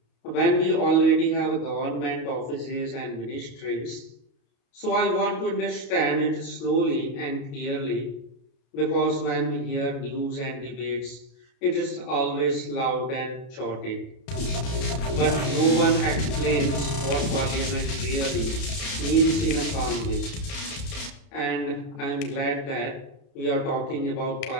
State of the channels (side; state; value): right; late; 31 ms